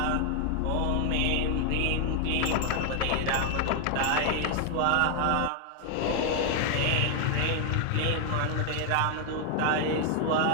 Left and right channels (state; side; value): different; both; correlation 0.00